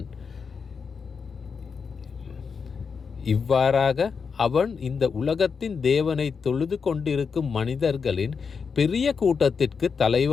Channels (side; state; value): right; quieter; 5.7 dB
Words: இவ்வாறாக அவன் இந்த உலகத்தின் தேவனை தொழுது கொண்டிருக்கும் மனிதர்களின் பெரிய கூட்டத்திற்கு